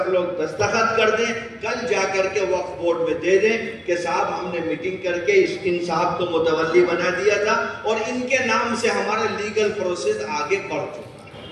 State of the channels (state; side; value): identical; both; correlation 1.00